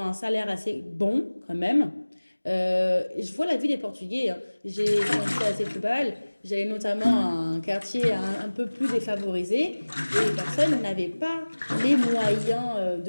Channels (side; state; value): both; inverted; correlation -1.00